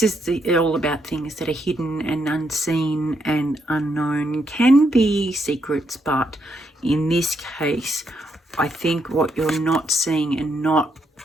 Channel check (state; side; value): normal; both; correlation 0.78